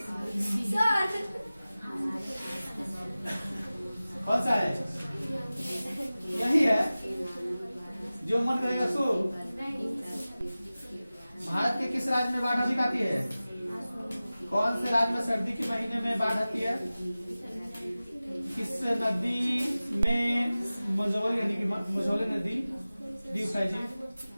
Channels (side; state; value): both; inverted; correlation -0.97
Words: कौन सा है? यही है जो मन करेगा सो। भारत के किस राज्य में बाढ़ अधिक आती है? कौन से राज्य में सर्दी के महीने में बाढ़ आती है? किस नदी में मझौली यानी कि मझौली नदी द्वीप है जी?